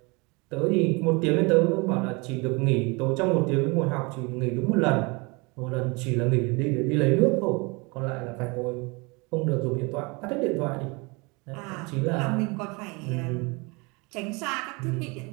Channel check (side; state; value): left; quieter; 28.0 dB